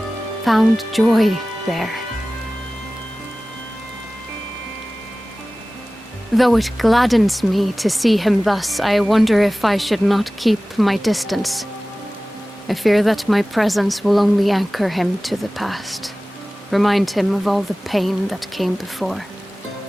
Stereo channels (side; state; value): both; normal; correlation 0.97